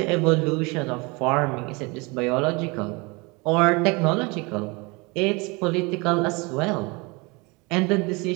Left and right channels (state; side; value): quieter; left; 27.1 dB